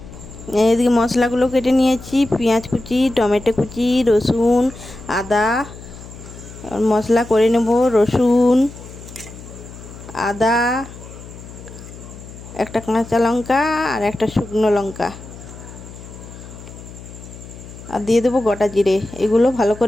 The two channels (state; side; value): noise; left; hum, 16 dB below the sound